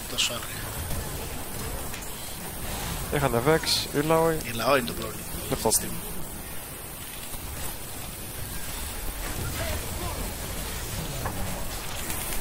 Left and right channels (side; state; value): both; identical; correlation 1.00